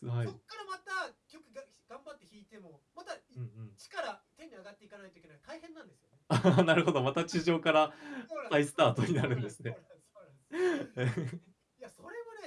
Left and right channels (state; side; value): identical; both; correlation 1.00